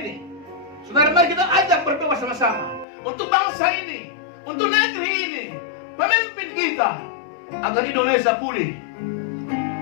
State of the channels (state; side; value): drops out; right; at 2.9 s